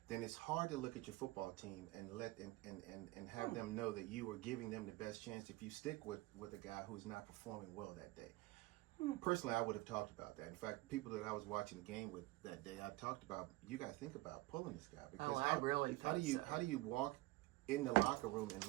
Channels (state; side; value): quieter; left; 20.2 dB